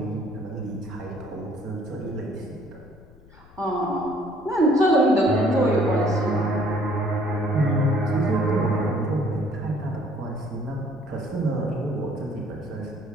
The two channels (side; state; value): left; noise; rumble, 24 dB below the sound